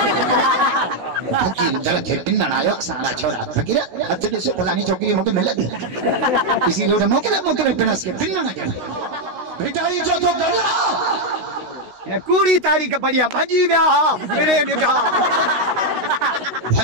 फकीर जरा थे पिन्नन आयो सारा छोरा फकीर हत दे से फलानी चौकरी मोके मिल दे किसी लोड मोके पिनस के पिन्नन के भेटाई जो तो गला कूड़ी तारीख बढ़िया भजी व्या मेरे निठा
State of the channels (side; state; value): left; late; 16 ms